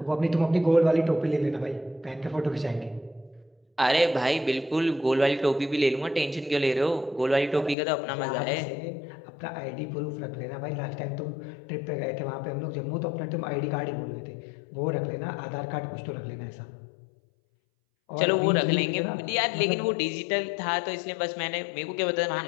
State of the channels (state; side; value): drops out; right; at 7.8 s